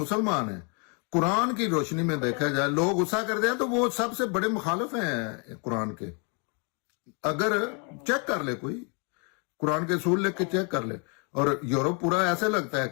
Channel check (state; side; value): quieter; right; 36.5 dB